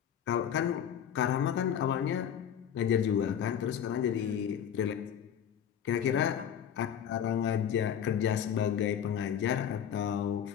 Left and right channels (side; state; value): right; quieter; 8.9 dB